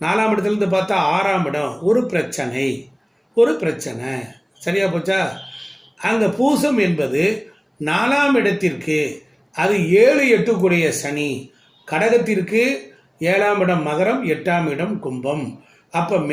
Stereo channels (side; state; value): both; identical; correlation 1.00